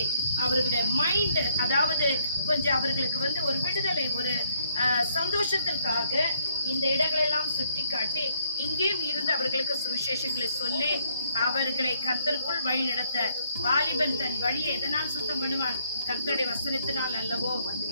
அவர்களுடைய மைண்ட், அதாவது கொஞ்சம் அவர்களுக்கு வந்து ஒரு விடுதலை, ஒரு சந்தோஷத்திற்காக இந்த இடங்களெல்லாம் சுற்றி காட்டி இங்கேயும் இருந்து அவர்களுக்கு சுவிசேஷங்களை சொல்லி அவர்களை கர்த்தருக்குள் வழி நடத்த, வாலிபன் தன் வழியை எதனால் சுத்தம் பண்ணுவான்? கர்த்தருடைய வசனத்தினால் அல்லவோ.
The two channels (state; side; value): inverted; both; correlation -0.67